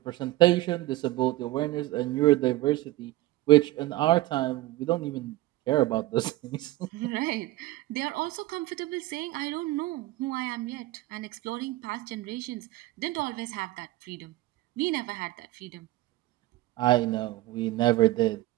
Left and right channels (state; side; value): quieter; left; 17.6 dB